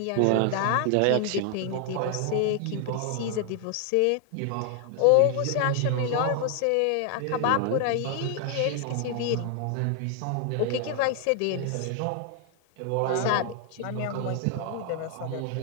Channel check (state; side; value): different; both; correlation 0.00